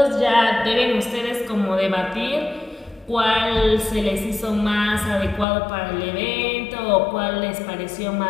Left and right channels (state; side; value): drops out; right; at 5.5 s